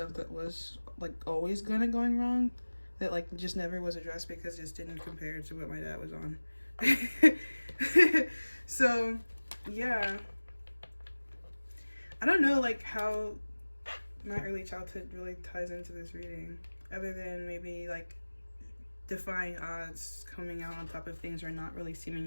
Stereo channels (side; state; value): both; inverted; correlation -1.00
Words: that was like always going wrong, that like just never was addressed because it just didn't compare to what my dad was on. So yeah, I don't know like how my early childhood really ties into this reading, other than maybe like defying odds, coming out on top of things, or not really